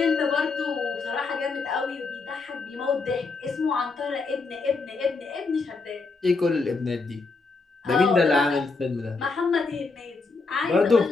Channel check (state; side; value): quieter; right; 4.1 dB